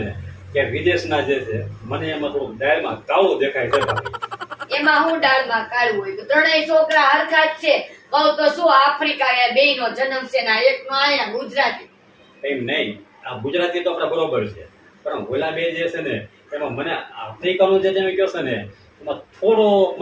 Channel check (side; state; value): both; identical; correlation 1.00